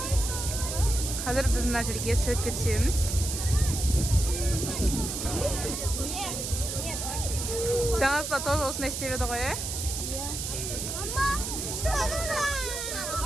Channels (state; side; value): noise; right; hiss, 4 dB below the sound